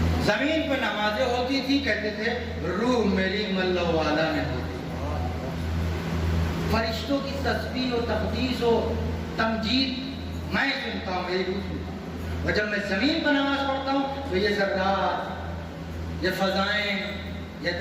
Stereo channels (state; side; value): identical; both; correlation 1.00